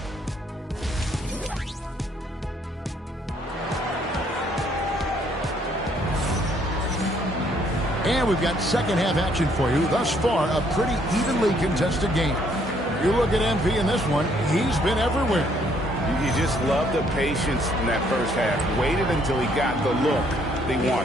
And we've got second half action for you. Thus far, a pretty evenly contested game. You look at MP in this one, he's been everywhere. You just love the patience in that first half. Waited until he got the look they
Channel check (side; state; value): both; normal; correlation 0.67